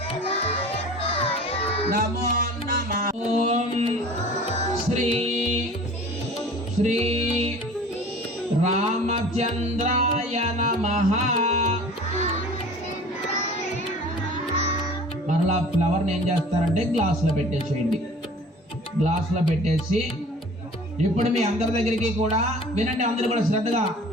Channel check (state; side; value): normal; both; correlation 0.44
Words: నమో నమః ఓం శ్రీ శ్రీ రామచంద్రాయ నమః. మరలా ఫ్లవర్ని ఏం చేస్తారంటే గ్లాసులో పెట్టేసేయండి. గ్లాసులో పెట్టేసి ఇప్పుడు మీ అందరి దగ్గరికి కూడా వినండి, అందరూ కూడా శ్రద్ధగా.